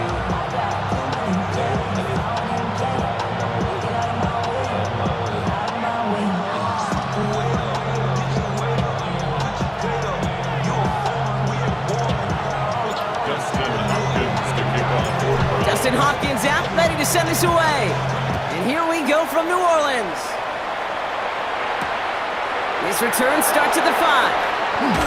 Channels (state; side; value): identical; both; correlation 1.00